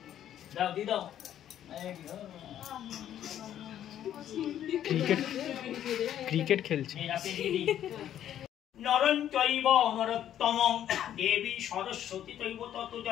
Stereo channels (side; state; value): right; quieter; 10.9 dB